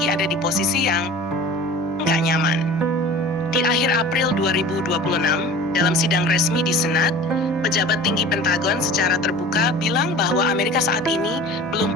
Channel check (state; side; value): normal; both; correlation 0.41